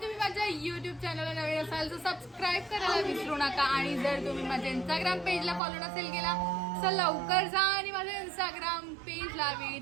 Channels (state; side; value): drops out; left; at 5.6 s